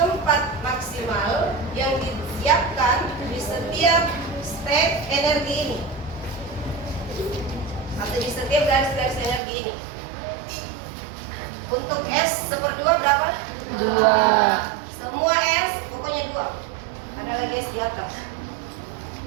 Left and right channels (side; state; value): left; drops out; at 9.4 s